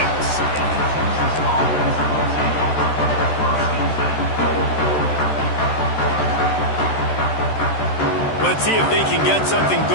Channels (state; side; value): late; right; 13 ms